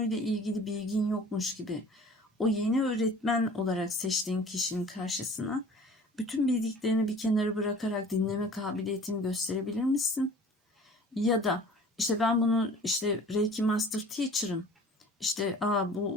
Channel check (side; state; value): both; normal; correlation 0.46